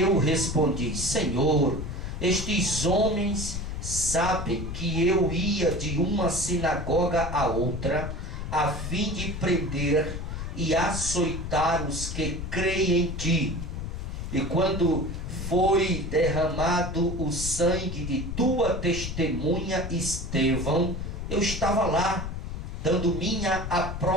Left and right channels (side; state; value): left; noise; rumble, 5 dB below the sound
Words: respondi: Senhor, estes homens sabem que eu ia de uma sinagoga a outra, a fim de prender e açoitar os que creem em ti. E quando foi derramado o sangue de tua testemunha Estevão, eu estava lá, dando minha